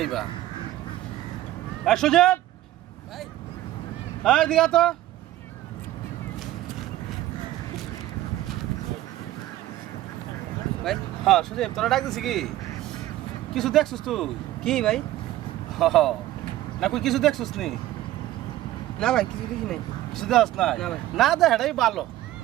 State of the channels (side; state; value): left; quieter; 14.8 dB